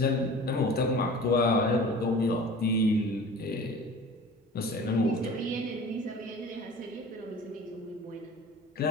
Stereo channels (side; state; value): both; normal; correlation 0.41